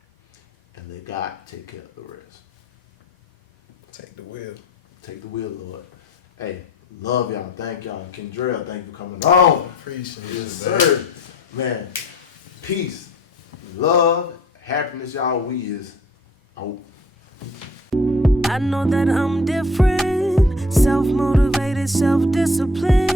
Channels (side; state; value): both; normal; correlation 0.50